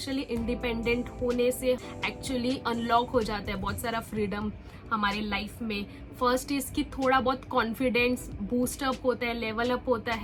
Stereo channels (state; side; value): identical; both; correlation 1.00